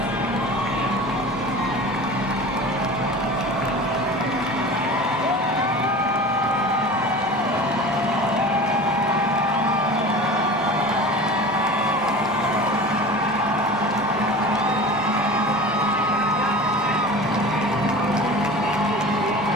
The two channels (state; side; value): normal; both; correlation 0.36